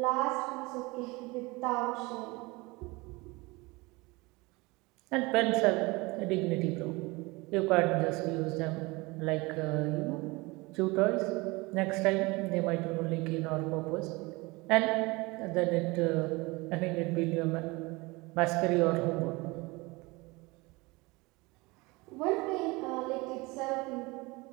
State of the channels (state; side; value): quieter; left; 24.1 dB